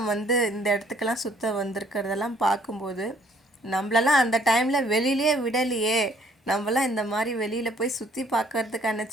வந்து இந்த இடத்துக்கெல்லாம் சுற்ற வந்திருக்கிறதெல்லாம் பார்க்கும்போது, நம்மளெல்லாம் அந்த டைமில் வெளியிலே விடலையே, நம்மளாம் இந்த மாதிரி வெளியில் போய் சுற்றி பார்க்கறதுக்கான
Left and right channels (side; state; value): both; normal; correlation 0.62